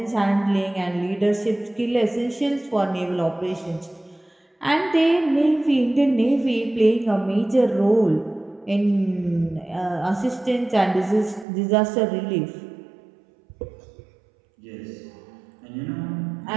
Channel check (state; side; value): drops out; left; at 11.5 s